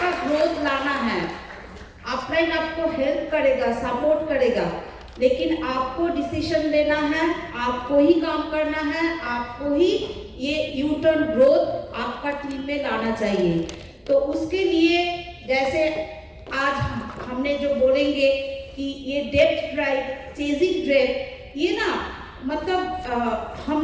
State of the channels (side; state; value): both; identical; correlation 1.00